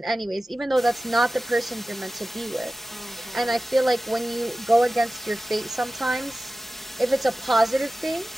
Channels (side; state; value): both; normal; correlation 0.95